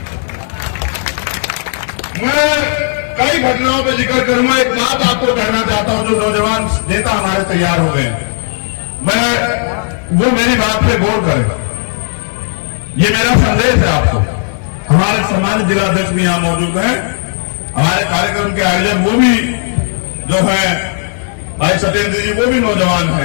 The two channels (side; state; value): right; silent; digital silence